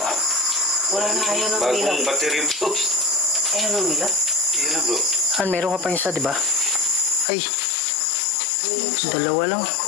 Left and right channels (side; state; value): right; drops out; at 7.2 s